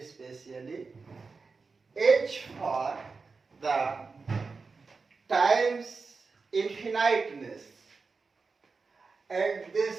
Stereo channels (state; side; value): quieter; left; 4.5 dB